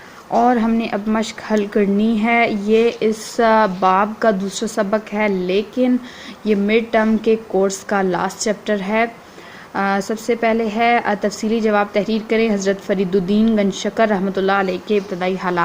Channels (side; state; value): both; identical; correlation 1.00